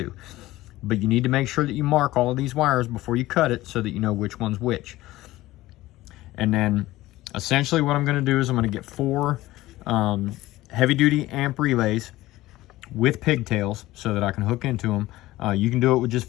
But you need to make sure that you mark all of these wires before you cut it so that you know which one's which. And then essentially what I'm going to do is I'm going to get 4 heavy duty amp relays with pigtails so that I can hook into them. You can do it with just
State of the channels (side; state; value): right; quieter; 17.1 dB